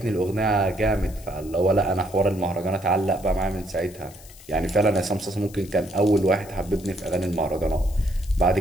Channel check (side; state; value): left; noise; hiss, 21 dB below the sound